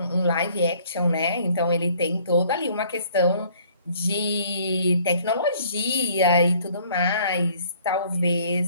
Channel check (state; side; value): inverted; both; correlation -0.58